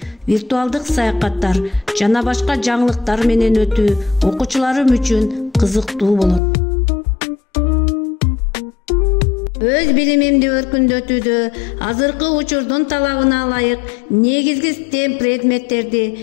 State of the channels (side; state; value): right; drops out; at 6.4 s